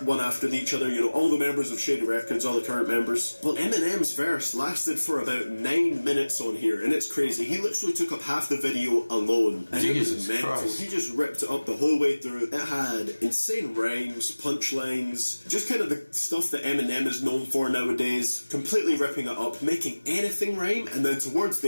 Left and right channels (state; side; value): inverted; both; correlation -1.00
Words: one after each other, you know, all the members of Shady Records, all the current members. Well, Eminem's verse lasted for about 9 minutes on here, and it's crazy. He literally took up half the video alone, and it was mental. Christ. He just ripped it up the whole way through. It had insane rhymes, punchlines, just kind of the stuff that Eminem is known for nowadays, completely ripping it up, making anything rhyme, and then towards